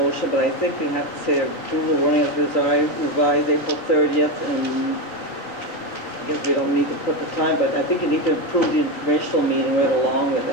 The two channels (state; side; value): late; right; 3.9 ms